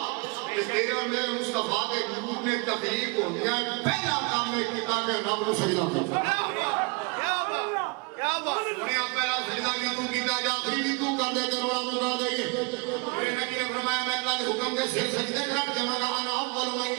کہ تیرے اور میرے مصطفیٰ کے نور نے تخلیق ہو گیا پہلا کام نے کتاب رب نو سجدہ کرنا انہیں آپ پہلا سجدہ بھی تو کیتا جا آخری بھی تو کر دے کے روڑا تو کر دے میرے نبی نے فرمایا میں اللہ کے حکم کے سے سجدے کر کے مگا انا اول من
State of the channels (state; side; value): quieter; left; 30.2 dB